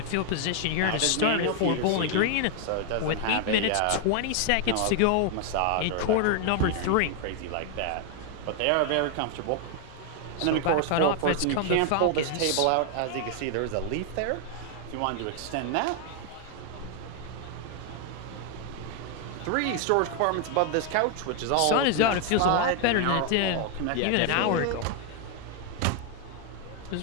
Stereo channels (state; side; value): different; both; correlation 0.00